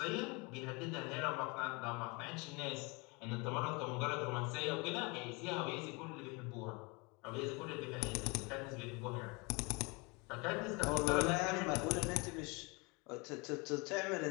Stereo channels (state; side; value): quieter; right; 28.5 dB